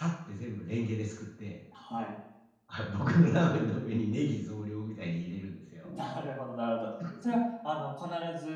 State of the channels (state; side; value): identical; both; correlation 1.00